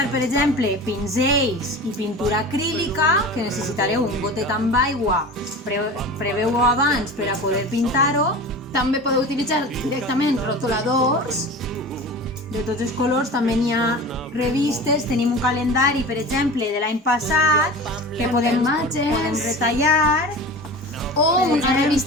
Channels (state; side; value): normal; both; correlation 0.34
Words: per exemple, pinzells i pintura acrílica, que necessitareu un gotet amb aigua. Preveu-ho abans per a poder pintar-ho. També podeu utilitzar directament rotuladors. De tots els colors, també n'hi ha revistes, tenim un calendari, per exemple, de l'any passat, que podem retallar. O una